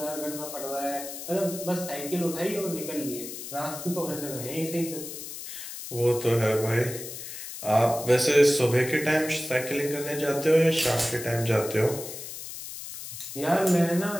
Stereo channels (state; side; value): noise; left; hiss, 10 dB below the sound